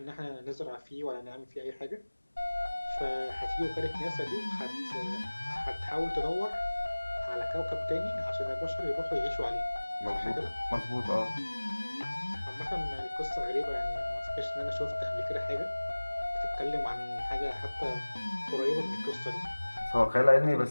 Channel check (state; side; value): inverted; both; correlation -1.00